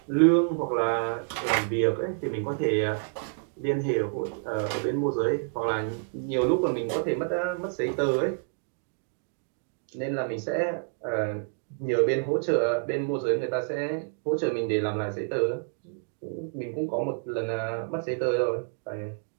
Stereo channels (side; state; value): left; silent; digital silence